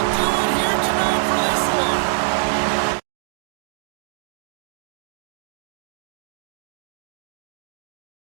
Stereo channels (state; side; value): silent; left; digital silence